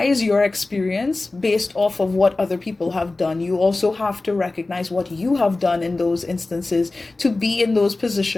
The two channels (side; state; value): right; quieter; 3.2 dB